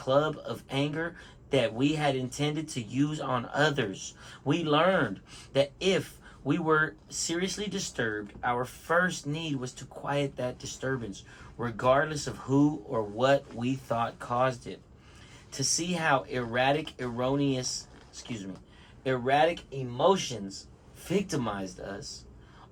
of anger that we had intended to use on others. We learned that if we were seriously disturbed, our first need was to quiet that disturbance, regardless of who or what we thought caused it. To see how erratic emotions victimized us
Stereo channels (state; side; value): identical; both; correlation 1.00